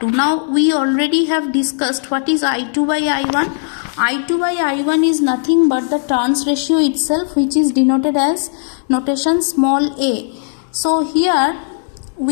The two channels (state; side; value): silent; right; digital silence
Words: Now we already have discussed what is I2 by I1. I2 by I1 is nothing but the turns ratio itself, which is denoted as notation small a. So here